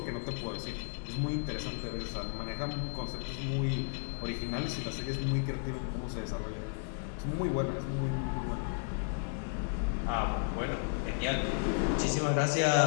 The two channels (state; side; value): silent; right; 55 dB below the other